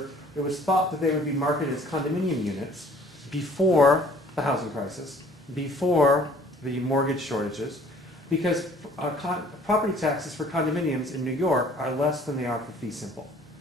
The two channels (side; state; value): both; normal; correlation 0.54